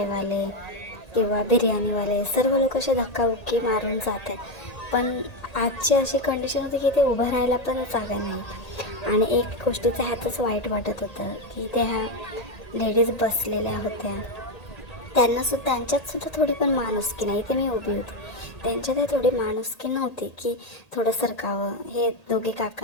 किंवा बिर्याणीवाले, सर्व लोक असे धक्काबुक्की मारून जात आहेत. पण आजची अशी कंडिशन होती की ते उभं राहायला पण जागा नाही. आणि एक गोष्टीचं ह्यातच वाईट वाटत होतं की त्या ह्या लेडीज बसलेल्या होत्या, त्यांच्यातसुद्धा थोडी पण माणुसकी नाही. ते मी उभी होती, त्यांच्यात थोडी माणुसकी नव्हती की थोडं सरकावं. हे दोघे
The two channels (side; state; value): right; late; 1.8 ms